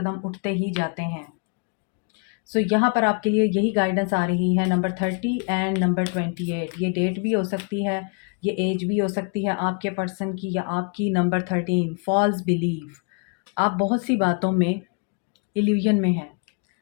उठते ही जाते हैं। सो यहाँ पर आपके लिए यही गाइडेंस आ रही है, नंबर 30 एंड नंबर 28। ये डेट भी हो सकती है, ये एज भी हो सकती है आपके पर्सन की या आपकी। Number 13, false believe. आप बहुत सी बातों में इल्यूजन में हैं,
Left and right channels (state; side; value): quieter; right; 37.7 dB